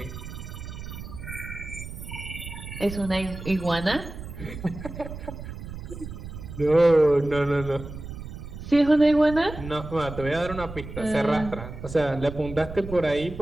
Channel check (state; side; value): noise; right; rumble, 10 dB below the sound